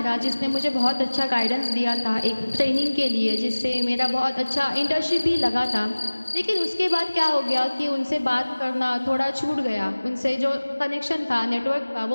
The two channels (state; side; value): inverted; both; correlation -1.00